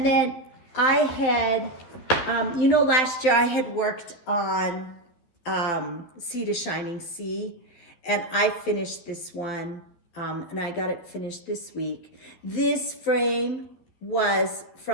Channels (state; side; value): late; right; 12 ms